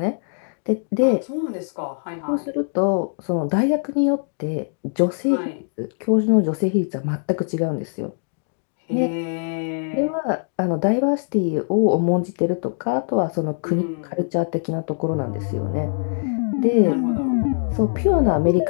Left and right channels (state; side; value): silent; right; digital silence